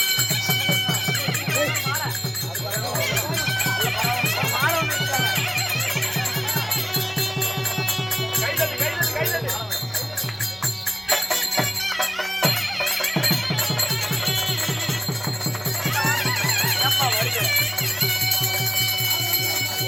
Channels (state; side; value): identical; both; correlation 1.00